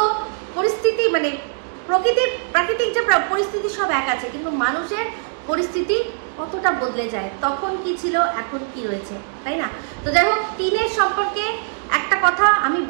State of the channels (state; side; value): silent; left; digital silence